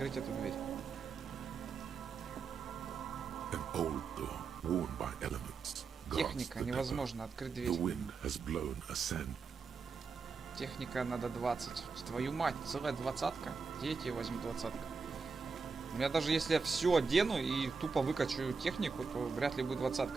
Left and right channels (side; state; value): left; quieter; 4.9 dB